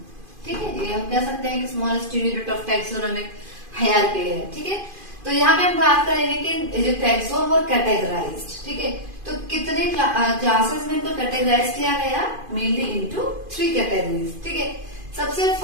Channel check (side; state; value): left; late; 2.5 ms